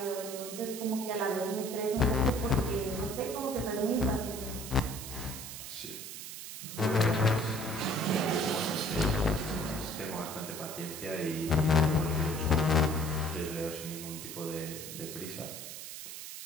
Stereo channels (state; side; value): noise; right; hiss, 9 dB below the sound